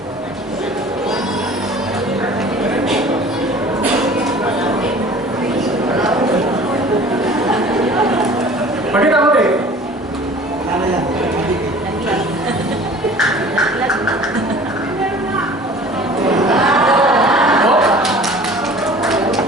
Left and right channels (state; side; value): normal; both; correlation 0.45